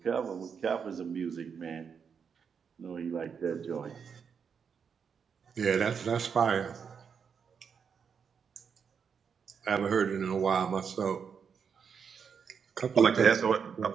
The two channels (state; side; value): quieter; left; 6.6 dB